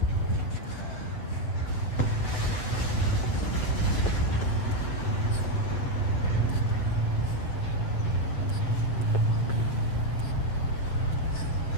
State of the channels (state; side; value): late; right; 8.0 ms